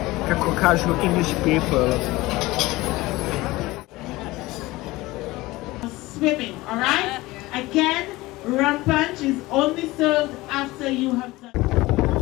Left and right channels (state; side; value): quieter; right; 19.7 dB